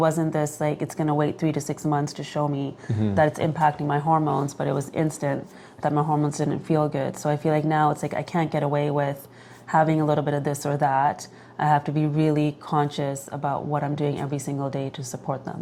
this, like it's gonna wait 3 to 6 months to show me that it's impacting my hormones, but it was instant that my hormones didn't feel good. So I feel like now it's like I can't get away with having a little bit of this or that. I have to be really conscious about what I'm doing every single day to support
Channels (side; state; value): both; identical; correlation 1.00